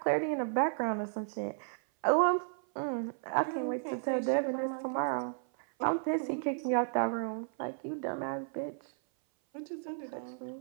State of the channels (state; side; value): silent; left; 55 dB below the other